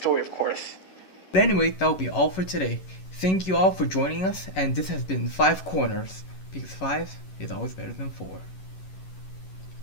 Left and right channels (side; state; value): right; late; 11 ms